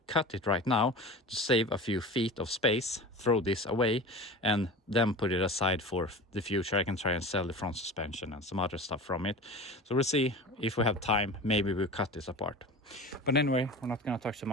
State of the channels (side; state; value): both; normal; correlation 0.33